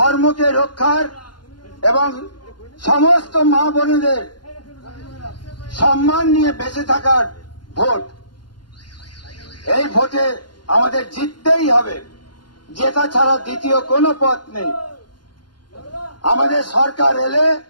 রক্ষার এবং সমস্ত মা বোনেদের সম্মান নিয়ে বেঁচে থাকার ভোট। এই ভোটে আমাদের জিততেই হবে, জেতা ছাড়া দ্বিতীয় কোনো পথ নেই। আমাদের সরকার এলে,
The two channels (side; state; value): right; late; 0.71 ms